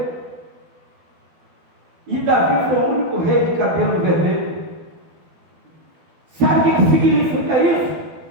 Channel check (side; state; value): left; late; 12 ms